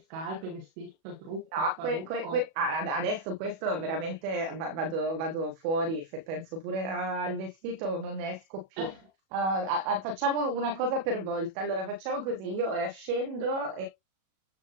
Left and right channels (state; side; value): late; left; 37 ms